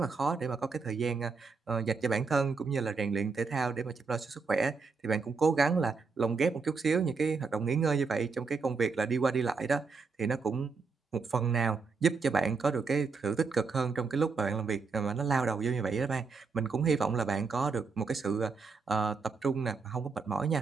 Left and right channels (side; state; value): left; quieter; 4.8 dB